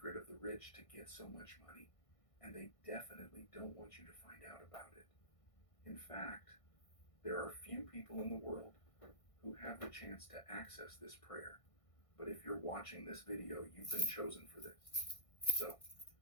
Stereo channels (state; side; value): late; right; 1.6 ms